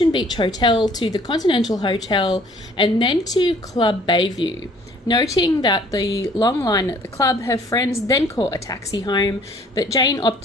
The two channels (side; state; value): both; normal; correlation 0.57